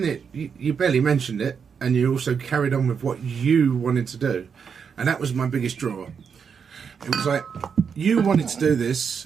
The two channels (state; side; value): quieter; left; 6.5 dB